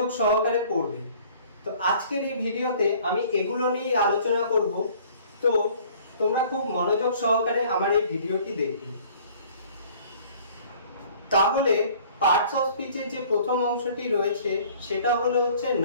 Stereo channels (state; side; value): inverted; both; correlation -0.53